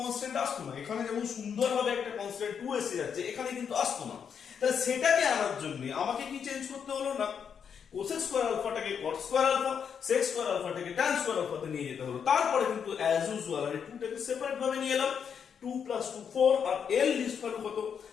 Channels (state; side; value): quieter; right; 7.3 dB